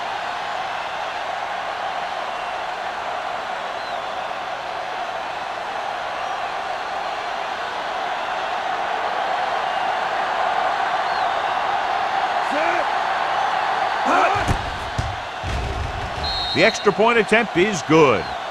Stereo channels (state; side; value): identical; both; correlation 1.00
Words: The extra point attempt is good.